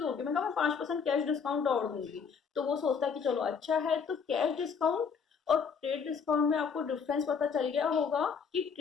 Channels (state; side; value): quieter; right; 6.1 dB